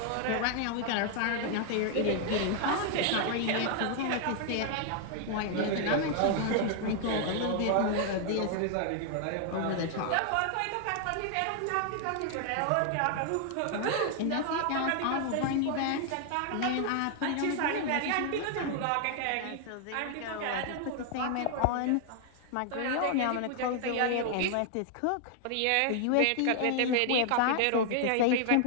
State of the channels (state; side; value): different; both; correlation 0.00